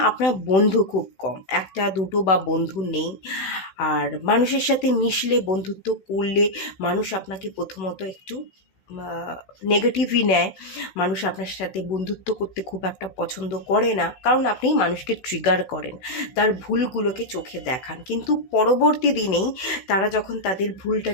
আপনার বন্ধু খুব কম, একটা দুটো বা বন্ধু নেই। আর মানুষের সাথে মিশলে, বন্ধুত্ব করলে মানুষ আপনাকে প্রথমত একটু নেগেটিভই নেয়। মানুষ আপনার সাথে বন্ধুত্ব করতে খুব একটা পছন্দ করে না, কারণ আপনি মানুষকে ট্রিগার করেন, তার ভুলগুলোকে চোখে দেখান। কিন্তু পরবর্তী দিনেই তারা যখন তাদের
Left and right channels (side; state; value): right; late; 16 ms